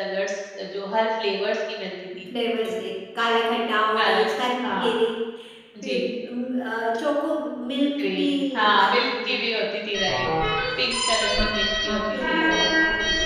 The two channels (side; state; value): both; identical; correlation 1.00